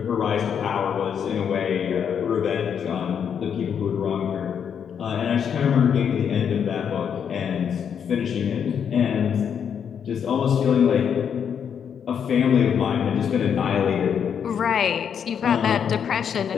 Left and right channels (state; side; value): quieter; right; 7.8 dB